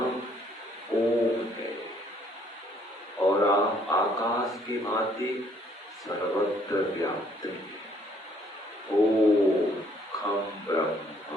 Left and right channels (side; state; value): both; normal; correlation 0.64